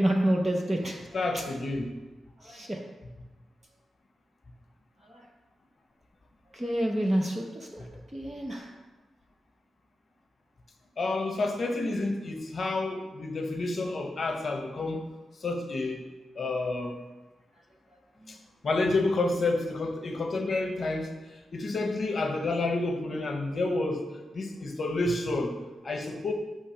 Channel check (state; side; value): normal; both; correlation 0.89